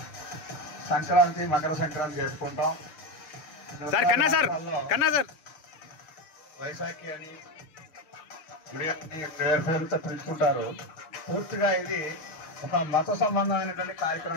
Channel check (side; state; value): right; late; 7.0 ms